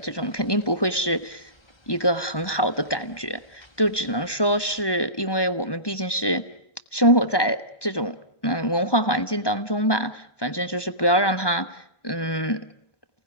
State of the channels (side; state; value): right; late; 1.2 ms